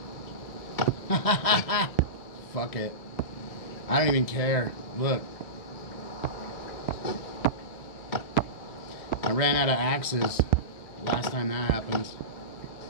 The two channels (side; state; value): right; late; 1.6 ms